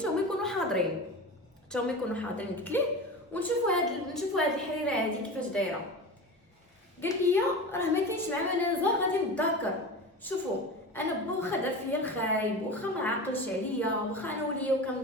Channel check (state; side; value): normal; both; correlation 0.29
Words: هما يكونوا حاضرين. قلت ليه ونشوفوا هاد الحريره هادي كيفاش دايره. قال لي راه ما كاينش مع منازه غادي نتذكر. شوفوا انا با واخا دار فيا الخايب، واخا ما عاقلش عليا، واخا انا وليا